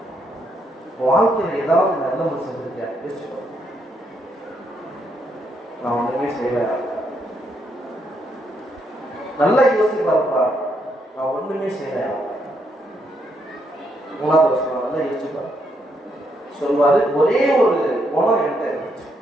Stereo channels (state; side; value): normal; both; correlation 0.76